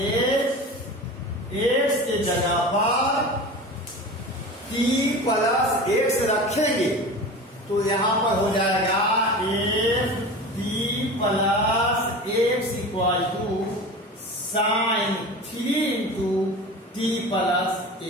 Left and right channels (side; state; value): both; normal; correlation 0.33